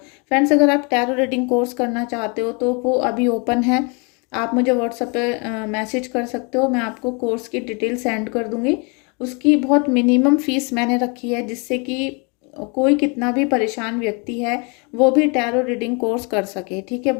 फ्रेंड्स, अगर आप टैरो रीडिंग कोर्स करना चाहते हो तो वो अभी ओपन है। आप मुझे व्हाट्सएप पे मैसेज कर सकते हो, मैं आपको कोर्स की डिटेल सेंड कर दूँगी। उसकी बहुत मिनिमम फ़ीस मैंने रखी है, जिससे कि कोई कितना भी परेशान व्यक्ति है वो भी टैरो रीडिंग कोर्स कर सके। ठीक है,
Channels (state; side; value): quieter; right; 32.4 dB